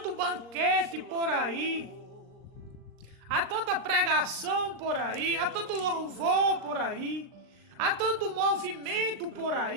banquete por aí, há tanta pregação por aí, há tanto louvor por aí, há tanto movimento por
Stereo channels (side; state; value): left; late; 39 ms